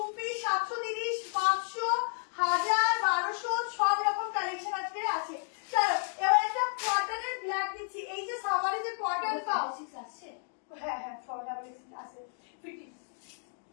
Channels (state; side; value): silent; right; 56 dB below the other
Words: পিস 730, 500, 1000, 1200 সব রকম কালেকশন আজকে আছে। চলো এবার একটা কটনের ব্ল্যাক দিচ্ছি, এই যে সামারে যে কটন পাও আছে, হ্যাঁ আছে ফিটিং,